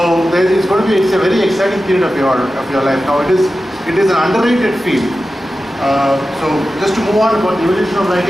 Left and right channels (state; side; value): normal; both; correlation 0.93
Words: it's going to be, it's a very exciting period of your life. Now it is an underrated field. So just to move on about the evolution of